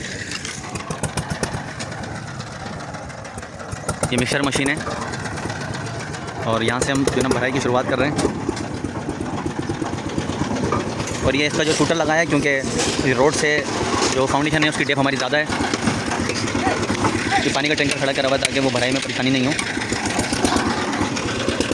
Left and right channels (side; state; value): both; identical; correlation 1.00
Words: ये मिक्सर मशीन है और यहाँ से हम जो है ना भराई की शुरुआत कर रहे हैं। और ये इसका जो शूटर लगाया है क्योंकि रोड से जो फाउंडेशन है उसकी डेप हमारी ज़्यादा है, कि पानी का टैंकर खड़ा करा हुआ ताकि वो भराई में परेशानी नहीं हो।